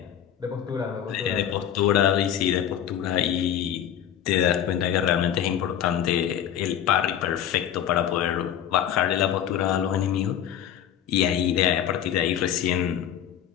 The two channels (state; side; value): quieter; right; 10.1 dB